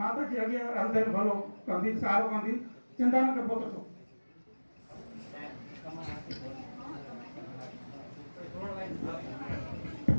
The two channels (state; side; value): inverted; both; correlation -1.00